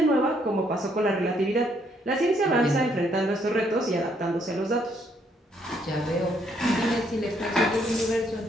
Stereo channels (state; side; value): normal; both; correlation 0.70